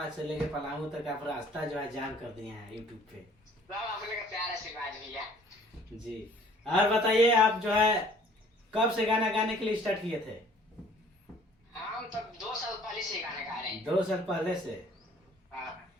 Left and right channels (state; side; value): normal; both; correlation 0.54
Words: से लेके पलामू तक आप रास्ता जो है जाम कर दिए हैं यूट्यूब पे। सब आप लोग का प्यार आशीर्वाद भैया। जी और बताइए, आप जो है कब से गाना गाने के लिए स्टार्ट किए थे? हम तो 2 साल पहले से गाना गा रहे हैं। 2 साल पहले से। हाँ,